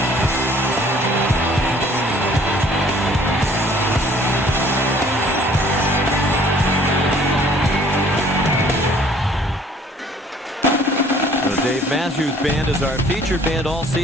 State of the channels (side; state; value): both; normal; correlation 0.56